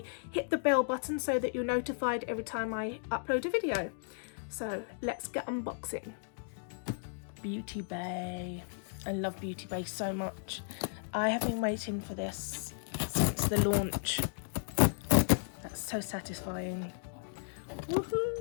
Hit the bell button so that you're notified every time I upload a video. So let's get unboxing. Beauty Bay. I love Beauty Bay so much. I have been waiting for this since the launch. That's so satisfying.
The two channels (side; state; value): right; silent; digital silence